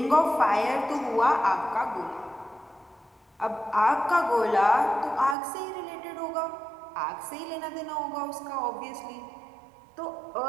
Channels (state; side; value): drops out; left; at 5.4 s